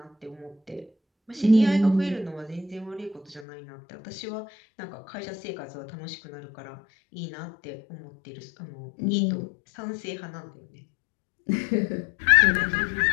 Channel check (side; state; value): right; drops out; at 3.5 s